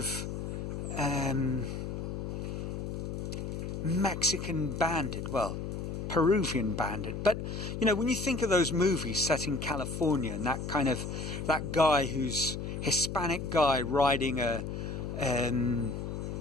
Mexican bandit, well, Peruvian bandit. But, when you think of those movies set in California, and that guy who's Hispanic guy riding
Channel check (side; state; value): left; noise; hum, 5 dB below the sound